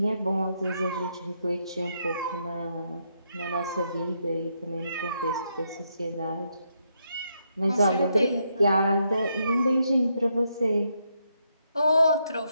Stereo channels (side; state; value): both; inverted; correlation -0.79